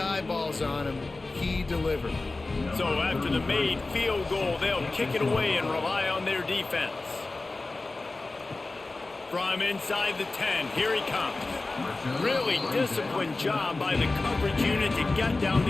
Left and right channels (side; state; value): right; quieter; 3.3 dB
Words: on him. He delivered. So after the made field goal, they'll kick it away and rely on their defense. From inside the 10, here he comes. Really disciplined job by the coverage unit to get down